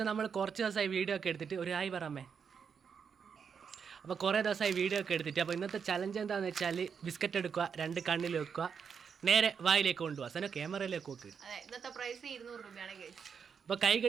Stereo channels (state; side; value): quieter; left; 6.6 dB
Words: നമ്മൾ കുറച്ച് ദിവസമായി വീഡിയോ ഒക്കെ എടുത്തിട്ട് ഒരു ആയി പറമ്മേ. അപ്പോൾ കുറേ ദിവസമായി വീഡിയോ ഒക്കെ എടുത്തിട്ട് അപ്പോൾ ഇന്നത്തെ ചലഞ്ച് എന്താണെന്ന് വെച്ചാൽ ബിസ്ക്കറ്റ് എടുക്കുക, 2 കണ്ണിൽ വെക്കുക, നേരെ വായിലേക്ക് കൊണ്ടുപോകുക. സനോ ക്യാമറയിലേക്ക് നോക്ക്. ഇന്നത്തെ പ്രൈസ് 200 രൂപയാണ് ഗൈസ്. അപ്പോൾ കൈ